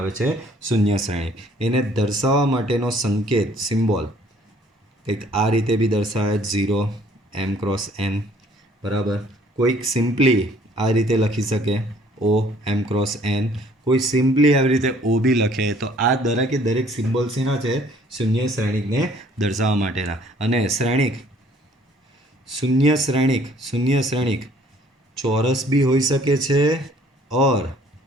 છે શૂન્ય શ્રેણિક. એને દર્શાવવા માટેનો સંકેત, સિમ્બોલ કંઈક આ રીતે બી દર્શાવે 0 m×n. બરાબર. કોઈક સિમ્પલી આ રીતે લખી શકે O m×n, કોઈ સિમ્પલી આવી રીતે O બી લખે. તો આ દરેકે દરેક સિમ્બોલ્સ એના છે શૂન્ય શ્રેણિકને દર્શાવવા માટેના. અને શ્રેણિક, શૂન્ય શ્રેણિક ચોરસ બી હોઈ શકે છે ઓર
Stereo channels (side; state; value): both; normal; correlation 0.59